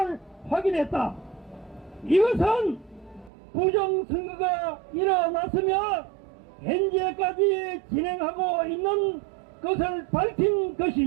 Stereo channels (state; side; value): drops out; left; at 3.3 s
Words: 확인했다. 이것은 부정선거가 일어났으며 현재까지 진행하고 있는 것을 밝힌